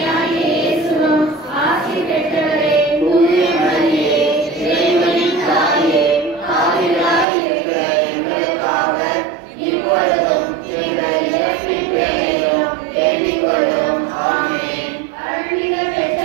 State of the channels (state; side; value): drops out; left; at 7.2 s